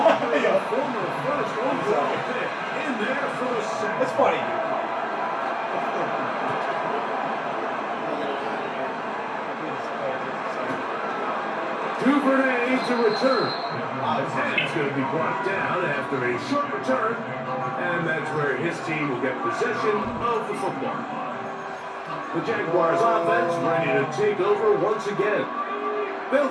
a former first overall pick, in there for the sack. That's funny. 2 for an A to return. And he's going to be brought down after a short return. And that's where his team will get possession of the football. The Jaguars offense ready to take over once again. They'll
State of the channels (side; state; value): both; identical; correlation 1.00